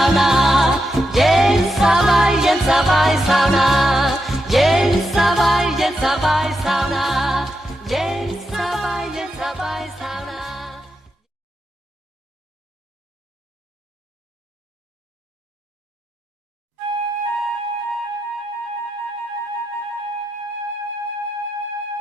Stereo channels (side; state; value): both; normal; correlation 0.85